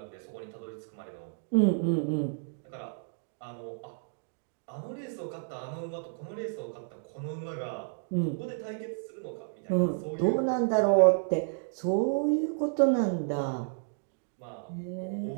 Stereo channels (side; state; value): left; silent; digital silence